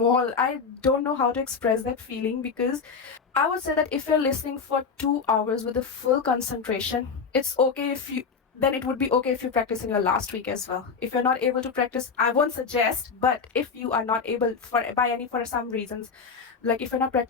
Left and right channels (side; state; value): right; quieter; 5.5 dB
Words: I don't know how to express that feeling, because I would say that if you're listening for 2 hours with a full concentration, it's okay then it would be okay if you practice in your last week as well. If you're not able to practice, I won't suggest, but if you are not able for some reasons, like if you're not